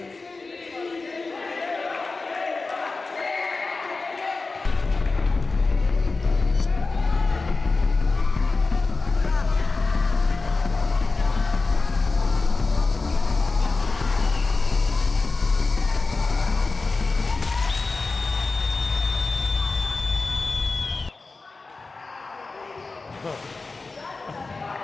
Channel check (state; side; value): quieter; right; 3.8 dB